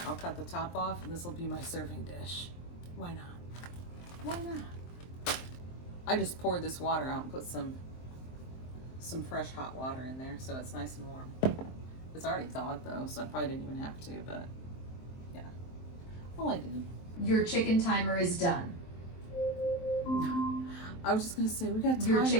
I'll cut the top off, and this will be my serving dish. Why not? Why not? I just poured this water out and put some fresh hot water in there, so it's nice and warm. It's already thawed though, so I probably didn't even have to, but yeah. Well, I did. Your chicken timer is done. I was just gonna say, we got timers. Your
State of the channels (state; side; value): late; right; 23 ms